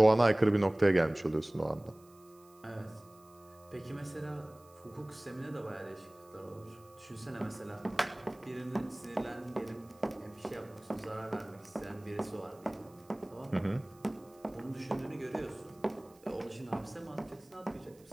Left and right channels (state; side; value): noise; right; hiss, 28 dB below the sound